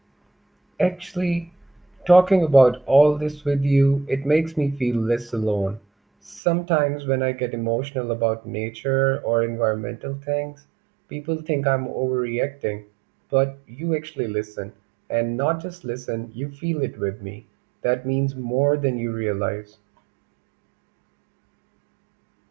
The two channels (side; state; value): left; drops out; at 6.4 s